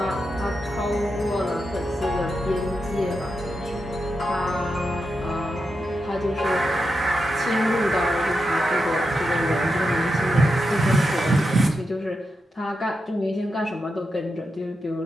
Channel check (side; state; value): both; normal; correlation 0.87